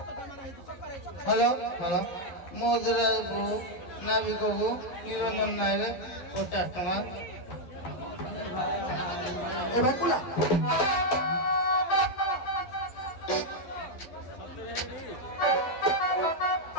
হ্যালো হ্যালো মধুরাজপুর নাবিকবাবু নিরঞ্জন নায়ক 50 টাকা। এবার কুলা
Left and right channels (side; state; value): right; late; 11 ms